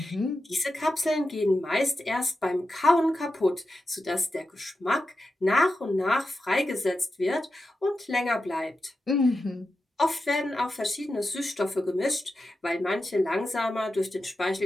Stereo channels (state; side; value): normal; both; correlation 0.90